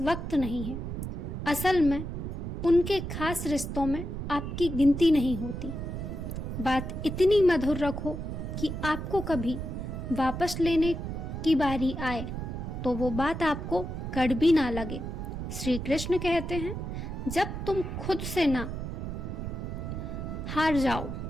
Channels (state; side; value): noise; right; rumble, 5 dB below the sound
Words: नहीं है, असल में उनके खास रिश्तों में आपकी गिनती नहीं होती। बात इतनी मधुर रखो कि आपको कभी वापस लेने की बारी आए तो वो बात आपको कड़वी ना लगे। श्री कृष्ण कहते हैं, जब तुम खुद से ना हार जाओ